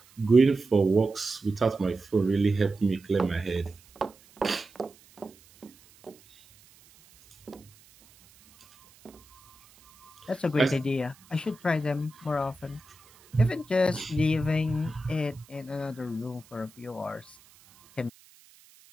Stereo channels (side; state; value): right; noise; hiss, 27 dB below the sound